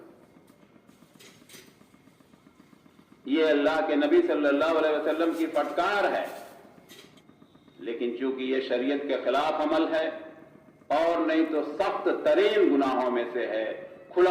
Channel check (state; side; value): identical; both; correlation 1.00